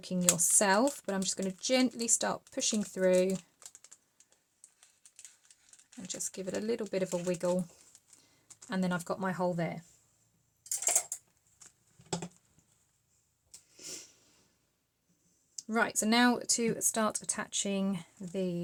yourself, but I'm just going to gently start pushing through and just give it a little bit of a wiggle, and then I've got my hole there. Right, so now to start attaching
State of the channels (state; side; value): identical; both; correlation 1.00